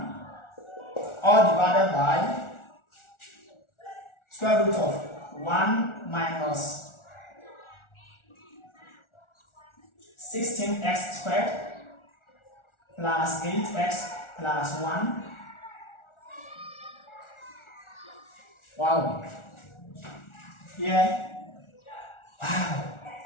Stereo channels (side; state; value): right; late; 1.4 ms